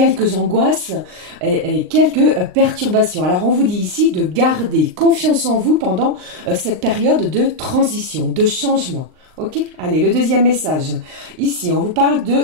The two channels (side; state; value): left; late; 39 ms